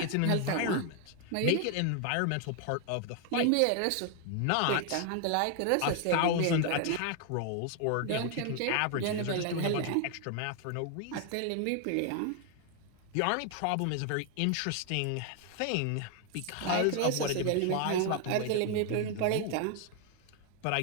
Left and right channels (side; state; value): both; different; correlation 0.00